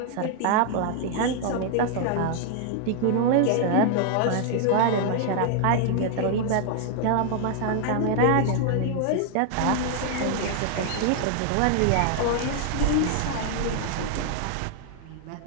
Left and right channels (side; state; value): both; different; correlation 0.00